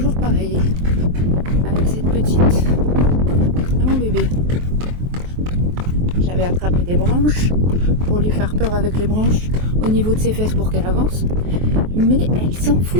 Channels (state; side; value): late; left; 23 ms